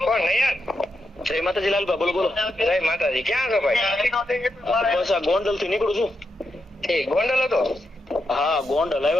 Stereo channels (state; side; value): normal; both; correlation 0.84